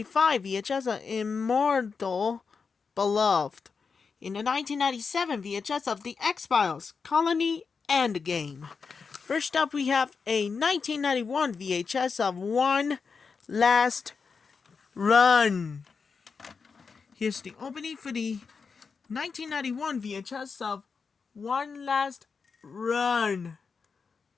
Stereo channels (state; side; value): quieter; right; 5.3 dB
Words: VHS a Immortal Beloved, in the 1997 VHS of The X-Files, Colony Endgame. First up, we have a 1991 VHS of One Last Run. Here's the opening for the 1991 VHS of One Last Run.